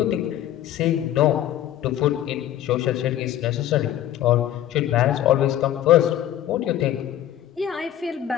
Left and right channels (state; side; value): quieter; right; 12.0 dB